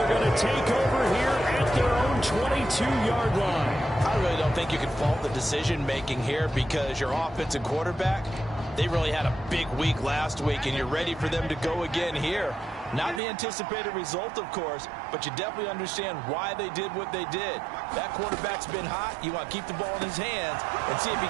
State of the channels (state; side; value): drops out; left; at 13.2 s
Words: going to take over here at their own 22-yard line. I really don't think you can fault the decision-making here because your offensive quarterback, they really had a big week last week, and you're ready for them to go again here. Not the anticipated result, of course, but you definitely understand why they did what they did. That quarterback's been hot. You want to keep the ball in his hands and see if he